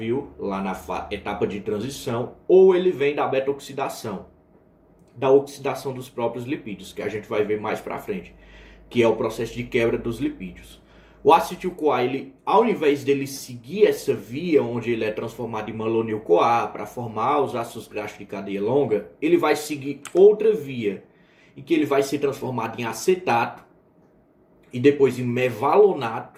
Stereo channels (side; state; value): both; identical; correlation 1.00